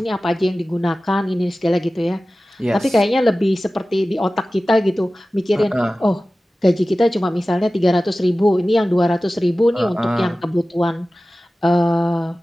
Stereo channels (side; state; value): both; normal; correlation 0.96